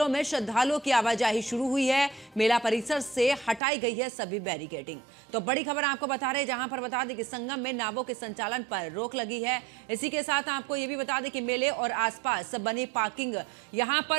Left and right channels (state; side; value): drops out; left; at 3.6 s